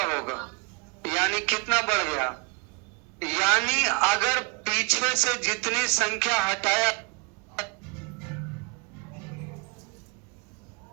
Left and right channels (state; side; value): quieter; left; 30.4 dB